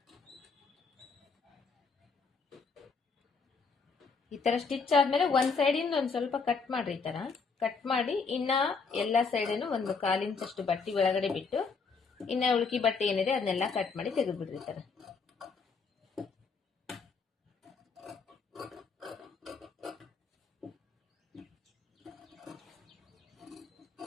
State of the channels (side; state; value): right; quieter; 4.8 dB